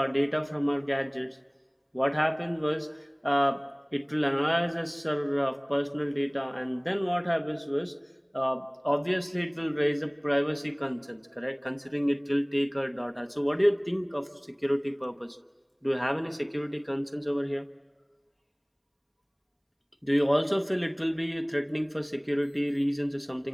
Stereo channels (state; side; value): identical; both; correlation 1.00